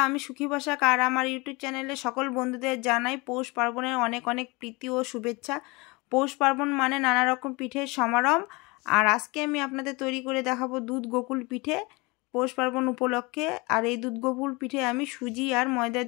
আমি সুখী বসাক আর আমার ইউটিউব চ্যানেলে সকল বন্ধুদের জানাই পৌষ পার্বণের অনেক অনেক প্রীতি ও শুভেচ্ছা। পৌষ পার্বণ মানে নানা রকম পিঠের সমারোহ। আর আজকে আমি আপনাদের তৈরি করে দেখাবো দুধ গোকুল পিঠে পৌষ পার্বণ উপলক্ষে। আর এই দুধ গোকুল পিঠে আমি সুজি আর ময়দা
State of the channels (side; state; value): right; quieter; 25.7 dB